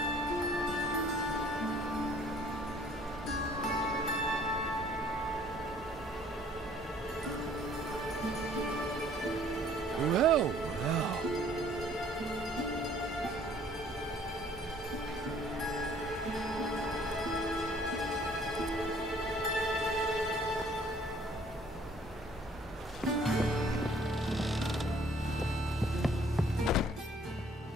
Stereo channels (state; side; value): normal; both; correlation 0.58